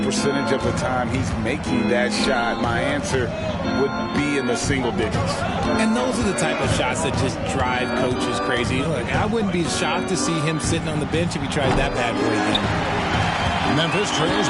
percentage of the time he's making that shot, my answer would be in the single digits. And those are the type of shots that just drive coaches crazy. Look, I wouldn't be shocked to see him sitting on the bench if he tried that bad boy again. Memphis trails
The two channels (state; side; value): identical; both; correlation 1.00